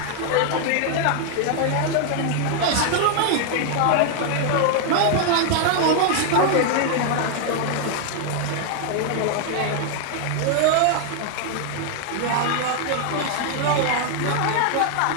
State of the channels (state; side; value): different; both; correlation 0.00